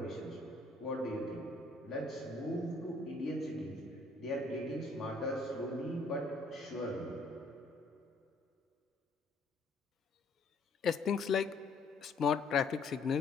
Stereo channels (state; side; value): quieter; right; 3.2 dB